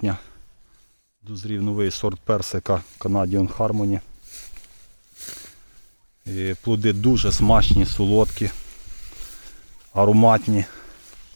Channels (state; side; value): inverted; both; correlation -1.00